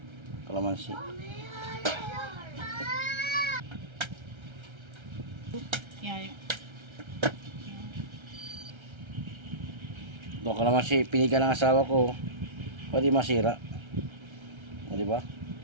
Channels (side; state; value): left; late; 1.3 ms